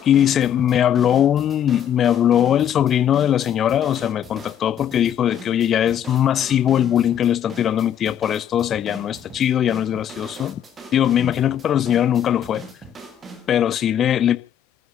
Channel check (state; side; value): quieter; right; 9.9 dB